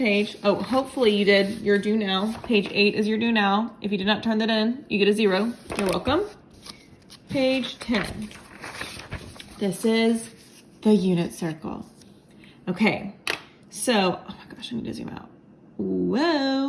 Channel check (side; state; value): both; identical; correlation 1.00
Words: Oh, hopefully you did your do now. Page 8 is your do now. If you did not turn that in, you get a 0. You're welcome. Page 10. This is the unit circle. Okay, so, oh my gosh, I need to zoom out.